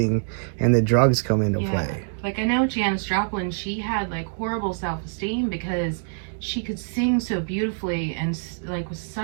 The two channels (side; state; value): left; silent; digital silence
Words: and the drugs come into play. Like I know Janis Joplin, she had like horrible self-esteem because she could sing so beautifully and like with